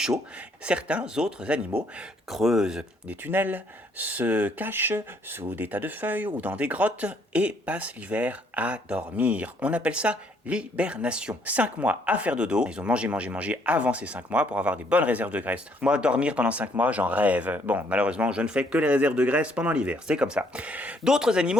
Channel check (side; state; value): both; normal; correlation 0.67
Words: Certains autres animaux creusent des tunnels, se cachent sous des tas de feuilles ou dans des grottes et passent l'hiver à dormir. On appelle ça l'hibernation. 5 mois à faire dodo. Ils ont mangé avant ces 5 mois pour avoir des bonnes réserves de graisse. Moi, dormir pendant 5 mois, j'en rêve. Bon, malheureusement, je ne fais que les réserves de graisse pendant l'hiver. C'est comme ça. D'autres